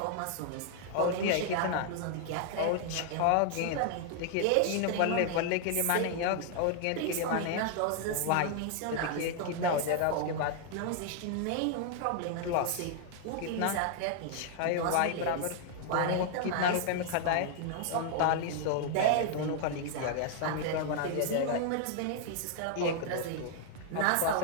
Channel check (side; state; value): both; different; correlation 0.00